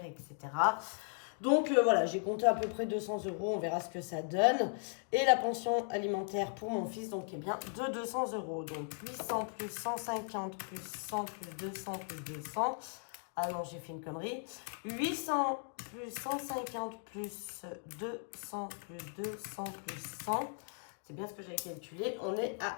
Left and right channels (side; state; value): right; silent; 53 dB below the other